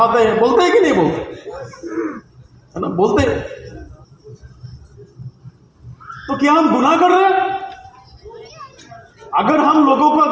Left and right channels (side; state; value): both; identical; correlation 1.00